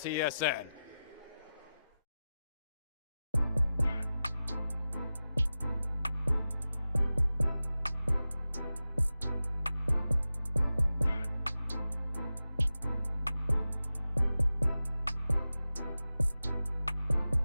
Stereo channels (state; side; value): inverted; both; correlation -0.93